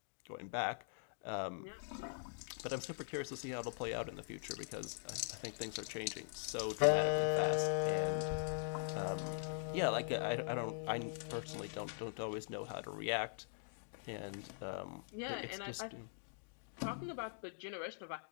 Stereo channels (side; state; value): right; silent; digital silence